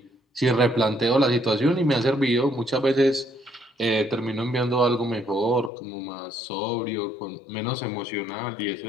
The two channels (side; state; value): right; drops out; at 5.7 s